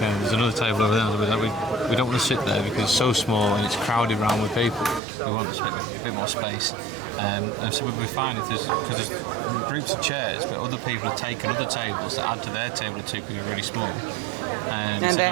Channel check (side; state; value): left; drops out; at 5.0 s